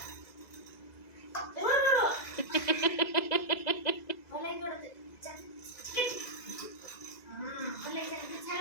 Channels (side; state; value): right; late; 2.0 ms